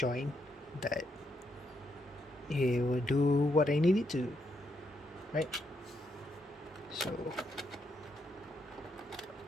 that it will do what I need it to, right? So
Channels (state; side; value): normal; both; correlation 0.79